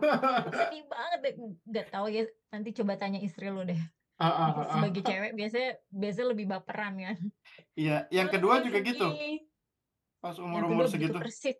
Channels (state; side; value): identical; both; correlation 1.00